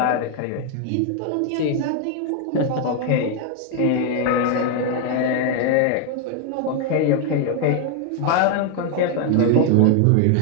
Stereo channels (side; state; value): both; different; correlation 0.00